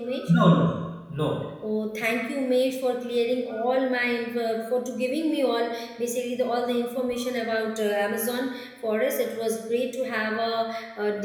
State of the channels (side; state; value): both; identical; correlation 1.00